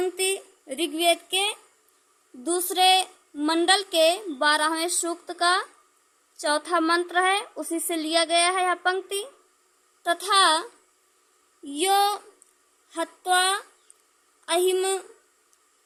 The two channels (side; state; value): both; identical; correlation 1.00